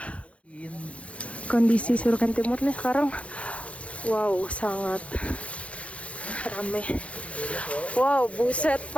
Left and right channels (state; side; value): late; right; 0.063 ms